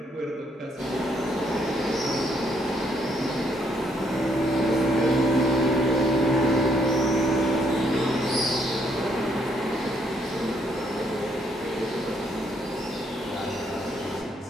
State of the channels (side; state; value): both; normal; correlation 0.71